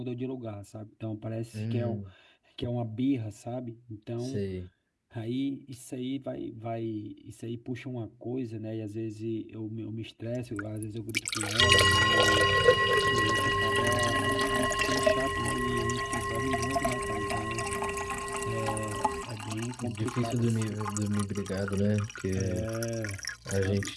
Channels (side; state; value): both; identical; correlation 1.00